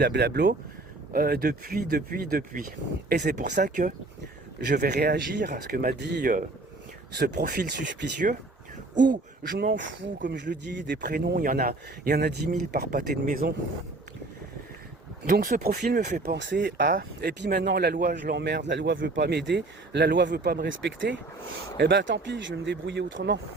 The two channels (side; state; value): left; quieter; 3.1 dB